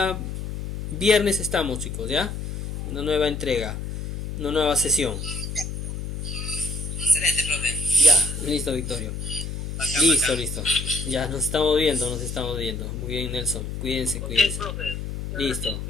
viernes estamos, chicos, ¿ya? Una nueva entrega, una nueva sesión. Excelente, profe. Ya, listo, Victorio. Bacán, Listo, bacán. listo. Ya nos estamos viendo, nos estamos viendo. Muy bien, Nelson. Cuídense, Ok, cuídense. profe. Muchas Listo. gracias.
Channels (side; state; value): left; noise; hum, 5 dB below the sound